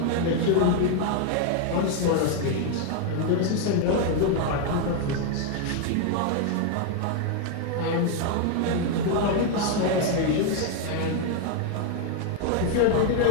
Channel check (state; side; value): different; both; correlation 0.01